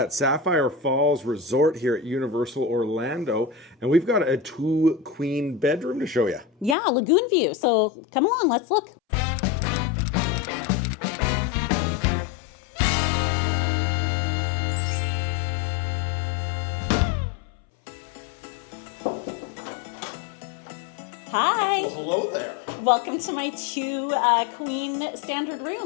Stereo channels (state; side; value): drops out; right; at 6.8 s